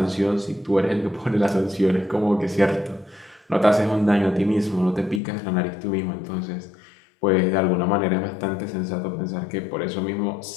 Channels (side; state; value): right; drops out; at 5.2 s